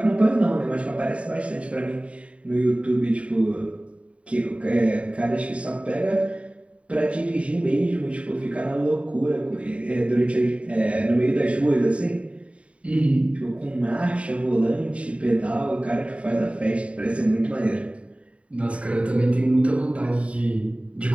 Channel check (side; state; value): left; late; 0.063 ms